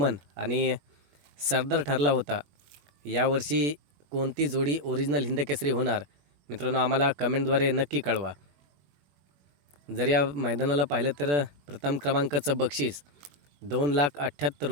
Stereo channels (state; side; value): late; left; 21 ms